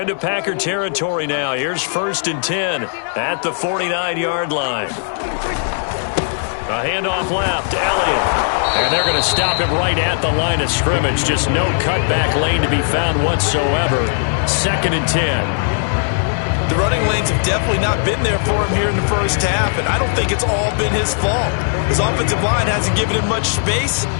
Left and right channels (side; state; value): right; silent; digital silence